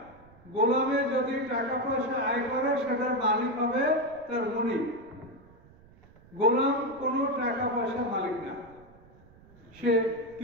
গোলামে যদি টাকা পয়সা আয় করে সেটার মালিক হবে তার মুনিব। গোলাম কোনো টাকা পয়সা মালিক না, সে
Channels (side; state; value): right; noise; rumble, 25 dB below the sound